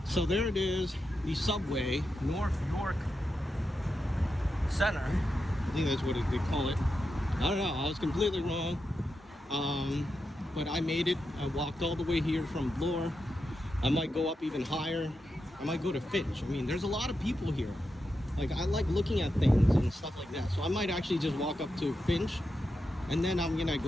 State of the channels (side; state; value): both; normal; correlation 0.87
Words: so there it is, the subway, North York Center. I think that's what they call it. I don't know, I was completely wrong. But I made it. I walked all the way here from Bloor. I might go up even higher. I might go to Finch. I mean, there's a lot of people here. Like, I like looking at things and stuff like that. So I might actually just walk up to Finch and then I'm gonna